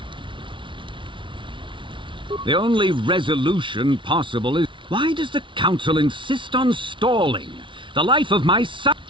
The only resolution possible is... Why does the Council insist on stalling? The life of my son...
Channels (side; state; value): left; late; 0.24 ms